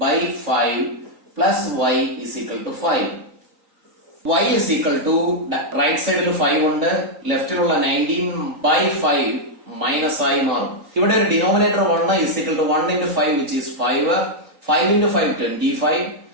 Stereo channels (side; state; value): left; late; 3.9 ms